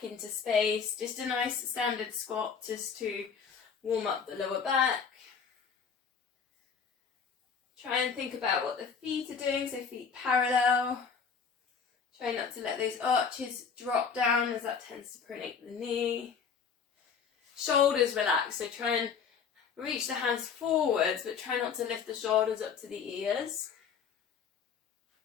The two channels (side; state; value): right; quieter; 6.3 dB